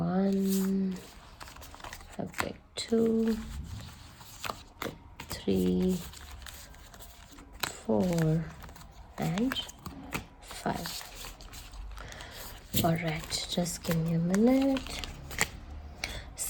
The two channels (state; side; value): identical; both; correlation 1.00